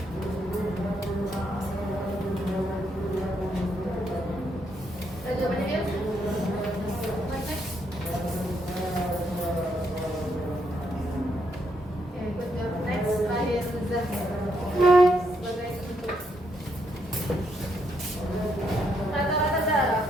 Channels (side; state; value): both; normal; correlation 0.76